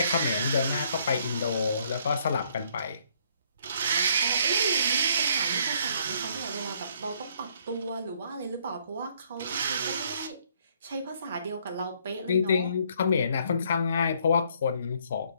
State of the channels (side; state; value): both; inverted; correlation -0.66